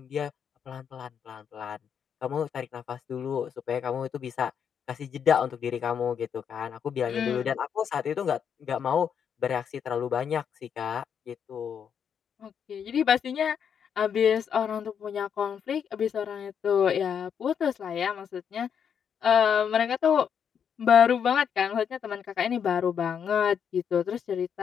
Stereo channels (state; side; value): quieter; right; 7.7 dB